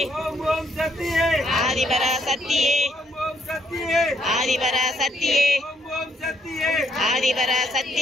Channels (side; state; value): both; normal; correlation 0.72